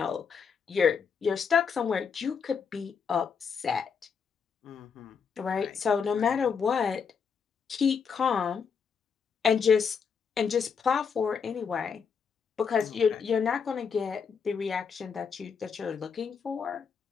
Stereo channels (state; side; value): quieter; right; 6.3 dB